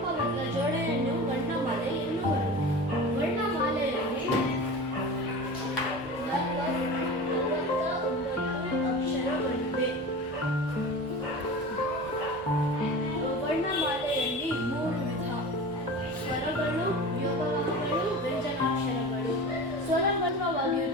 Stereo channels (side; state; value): both; normal; correlation 0.33